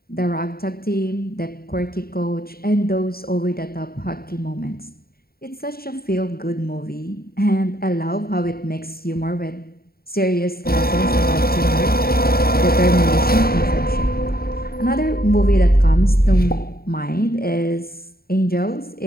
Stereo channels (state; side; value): late; right; 0.44 ms